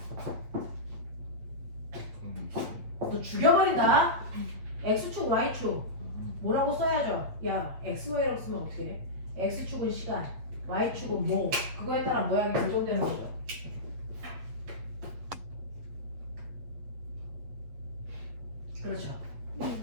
너 죽여버린다? X축, Y축 뭐라고 써야죠? 야, XY라고 쓰면 어떻게 해? X축은 시간, Y축은 뭐 그거에 따라 모양이 고정되는 거죠. 그렇죠.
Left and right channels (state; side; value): late; left; 8.4 ms